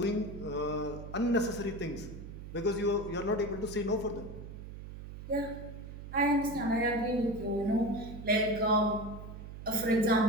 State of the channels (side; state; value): right; noise; hum, 11 dB below the sound